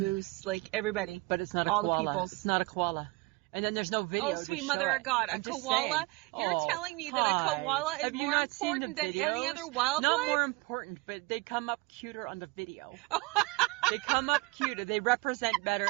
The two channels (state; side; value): quieter; left; 24.6 dB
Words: like everybody. But it's not a koala. All the peoples. It's not a koala. And then there's no video. Oh, sweet mother of God. A koala? You're telling me that a koala is more important than any other wildlife? Not more important, but they come up cuter on the video. They come up cuter. They represent better